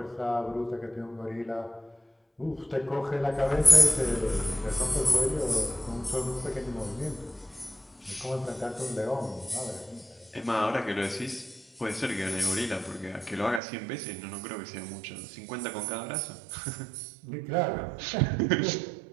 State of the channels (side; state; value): left; drops out; at 13.6 s